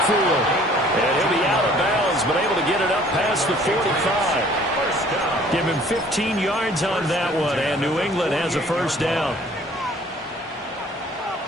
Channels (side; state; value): both; normal; correlation 0.55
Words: And he'll be out of bounds, but able to get it up past the 45. Give him 15 yards on that one, and New England has a first down.